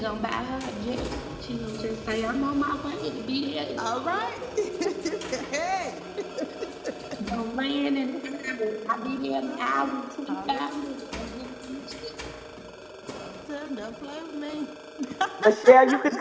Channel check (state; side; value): identical; both; correlation 1.00